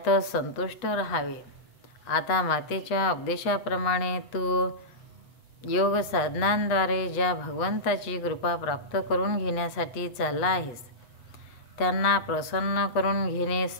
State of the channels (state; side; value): late; right; 8.2 ms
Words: संतुष्ट राहावे. आता मातेच्या उपदेशाप्रमाणे तू योग साधनांद्वारे ज्या भगवंताची कृपा प्राप्त करून घेण्यासाठी चालला आहेस त्यांना प्रसन्न करून घेणे